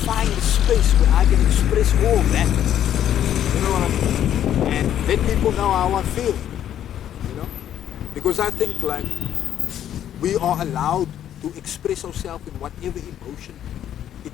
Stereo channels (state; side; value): quieter; right; 10.7 dB